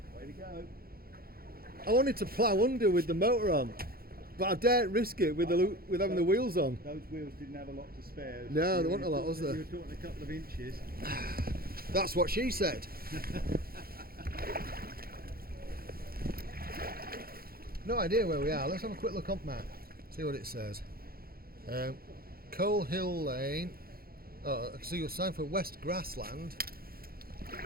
go. I wanted to plough under with the motor on, but I daren't risk it with having the wheels on. Those wheels didn't have a lot to spare. No, there wasn't a lot, was there? You were talking a couple of inches. That's what she said. No idea where we are. Let's have a quick look on map. See what it says. Coal Hill Lane. Oh, I can see your sign for West Grassland.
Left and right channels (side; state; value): left; late; 0.44 ms